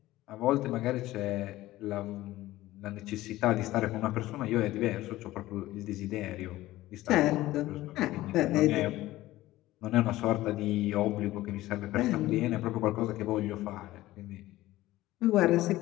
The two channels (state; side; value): quieter; right; 16.5 dB